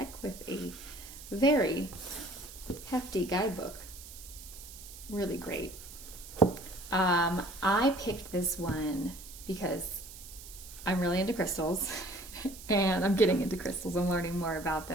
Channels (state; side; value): noise; right; hiss, 15 dB below the sound